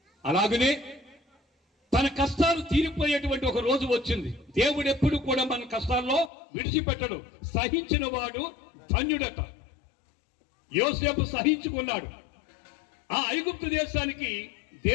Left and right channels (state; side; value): drops out; right; at 6.3 s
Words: అలాగనే తన కష్టాలు తీరిపోయేటువంటి ఒక రోజు వచ్చింది. దేవుడు ఎప్పుడు కూడా మన కష్టాల్లో విడిచిపెట్టడు. సహించిన వాడు ధన్యుడట. యోసేపు సహించుకున్నాడు. ఆ ఐగుప్తు దేశానికి